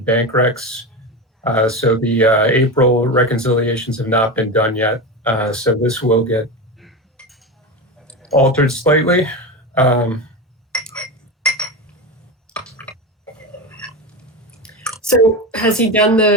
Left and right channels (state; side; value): normal; both; correlation 0.21